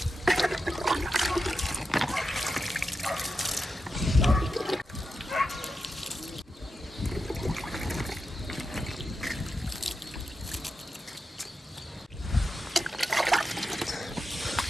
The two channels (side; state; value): both; normal; correlation 0.89